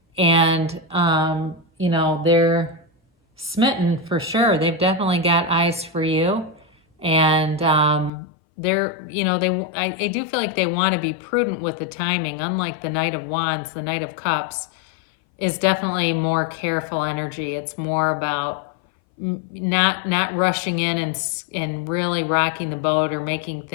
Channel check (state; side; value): drops out; right; at 8.1 s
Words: and you know, they're smitten for sure. They've definitely got eyes for you, and they're, you know, I do feel like they want to be prudent with the timing. Unlike the Knight of Wands, the Knight of Cups is definitely more careful energy. It's more about not rushing in and really rocking the boat or making